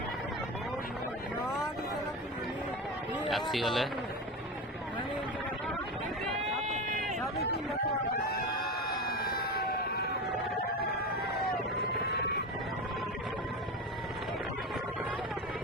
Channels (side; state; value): both; normal; correlation 0.23